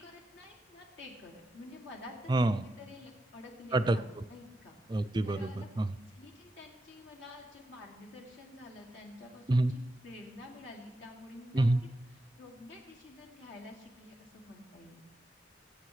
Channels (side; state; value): both; normal; correlation 0.86